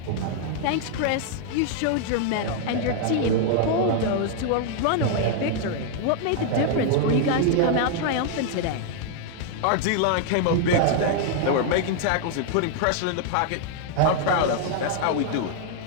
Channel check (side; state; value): both; different; correlation 0.00